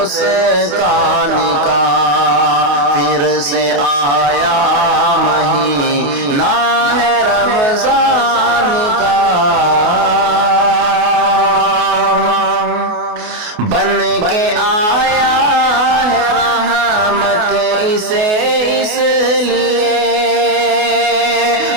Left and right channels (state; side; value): late; left; 28 ms